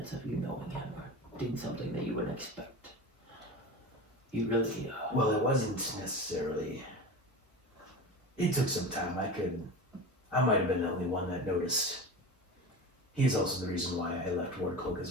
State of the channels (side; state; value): both; normal; correlation 0.29